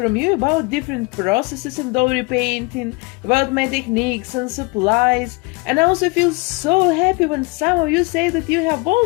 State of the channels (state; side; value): quieter; right; 27.0 dB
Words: you about different processes in doll repainting, about my techniques and supplies, and I also feel so happy when some of you say that you have